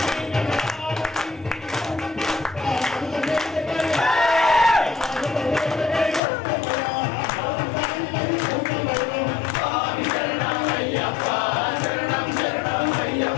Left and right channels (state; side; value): drops out; right; at 6.2 s